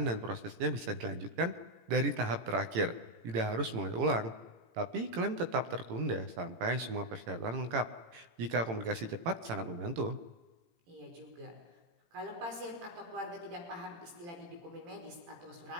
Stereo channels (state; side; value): late; left; 18 ms